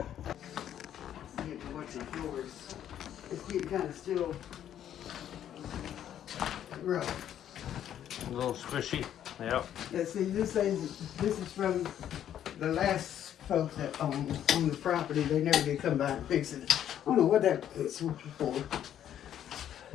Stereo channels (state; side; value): quieter; right; 10.5 dB